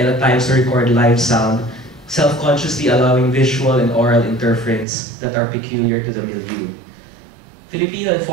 at times to record live sound self-consciously allowing visual and oral interference that are peculiar to the milieu. Filipino and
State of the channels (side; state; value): left; drops out; at 4.9 s